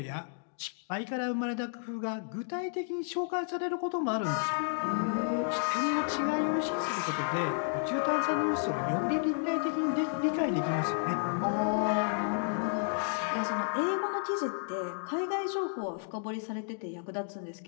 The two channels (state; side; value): silent; right; digital silence